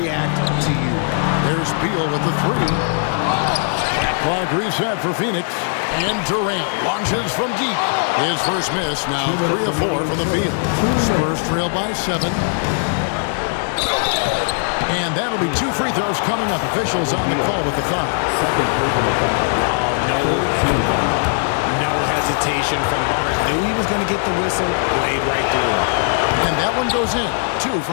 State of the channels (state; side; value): silent; right; digital silence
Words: to you. There's Beal with the 3. Shot clock reset for Phoenix. And Durant launches from deep. His first miss, now 3 of 4 from the field. Spurs trail by 7. And that'll be 2 free throws coming up. Officials on the call with the foul. No hesitation from Barnes. Knew he was going to get the whistle, played right through him. And that one goes in. 2